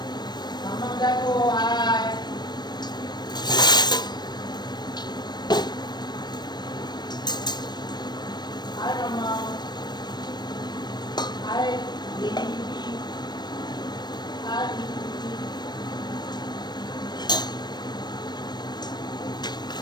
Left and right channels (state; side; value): late; right; 0.21 ms